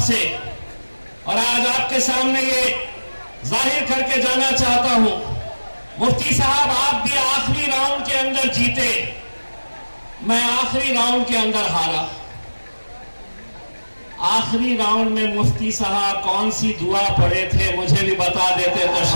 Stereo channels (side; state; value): both; inverted; correlation -1.00